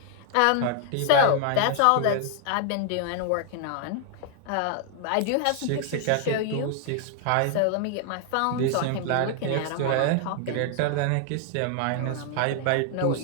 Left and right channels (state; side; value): different; both; correlation 0.00